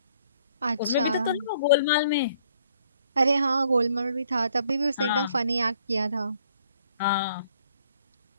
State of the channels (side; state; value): both; inverted; correlation -0.64